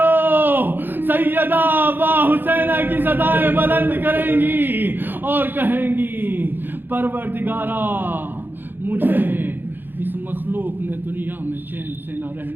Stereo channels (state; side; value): late; left; 0.095 ms